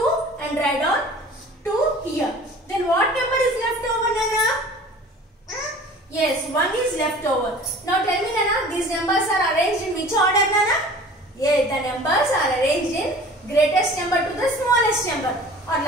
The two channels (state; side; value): normal; both; correlation 0.44